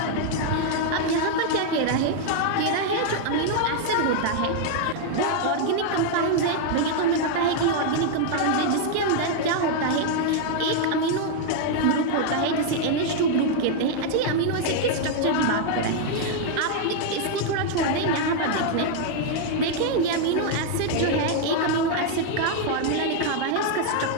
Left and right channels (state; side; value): different; both; correlation 0.00